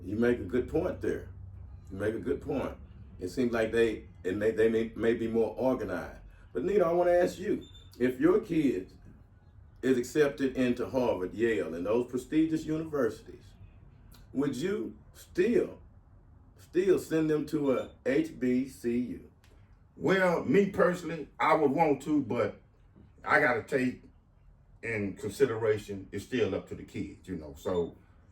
You make a good point there. You make a good point. It seems like they may be more organized. But Nita, I want to ask you, if your kid is accepted into Harvard, Yale, and those prestigious universities, would you still send them to a HBCU? Well, me personally, I would want to, but I got to take in consideration it's still up to the kids, you know. So,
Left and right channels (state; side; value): identical; both; correlation 1.00